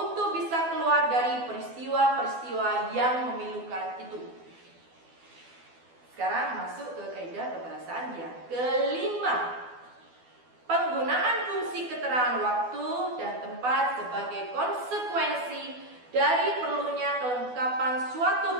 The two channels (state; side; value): late; left; 12 ms